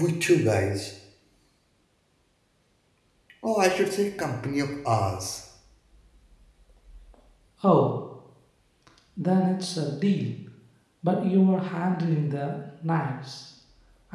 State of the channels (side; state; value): both; identical; correlation 1.00